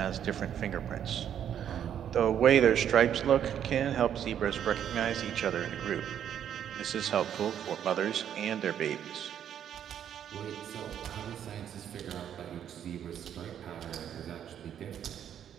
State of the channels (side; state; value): left; quieter; 9.5 dB